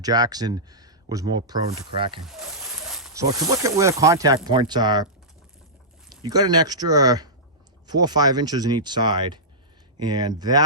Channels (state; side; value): normal; both; correlation -0.15